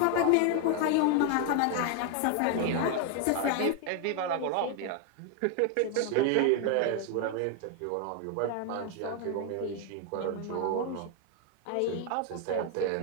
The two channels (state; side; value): different; both; correlation 0.01